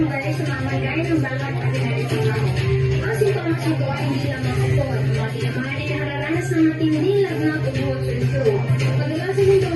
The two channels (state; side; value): identical; both; correlation 1.00